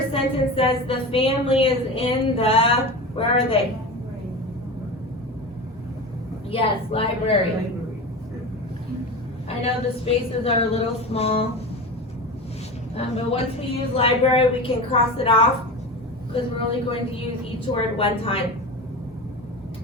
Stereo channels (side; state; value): both; normal; correlation 0.28